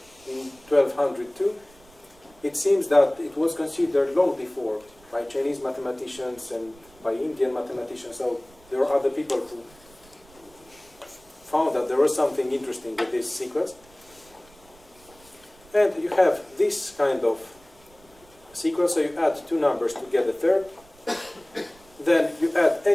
in 1202. It seems that it was considered long before by Chinese mathematicians and by Indian mathematicians. So there are other people who found that there was something interesting with this sequence. And you have this kind of sequence, so you add 2 numbers to get a third. Then you add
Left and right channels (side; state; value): right; noise; rumble, 27 dB below the sound